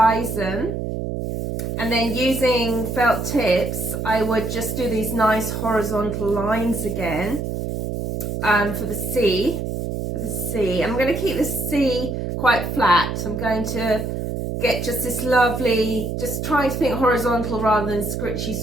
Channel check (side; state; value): right; noise; hum, 3 dB below the sound